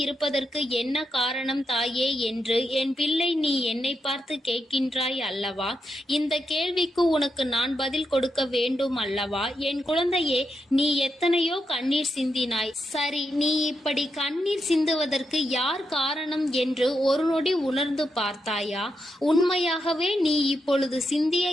இருப்பதற்கு என்ன காரணம் தாயே என்று என் பிள்ளை நீ என்னை பார்த்து கேட்கின்றாய் அல்லவா? இந்த கேள்விக்கு உனக்கு நான் பதில் கொடுக்க வேண்டும் அல்லவா? என் குழந்தையே, நீ எத்தனையோ கண்ணீர் சிந்தினாய். சரி, நீ இப்படி கண்ணீர் சிந்துவதற்கு யார் காரணம் என்று ஒரு நொடி உணர்ந்து பார்த்தாயா? உண்மையாகவே நீ இப்பொழுது சிந்திய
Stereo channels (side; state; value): both; normal; correlation 0.84